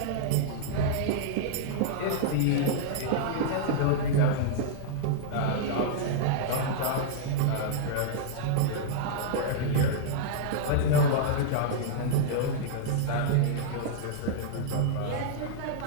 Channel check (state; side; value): different; both; correlation -0.02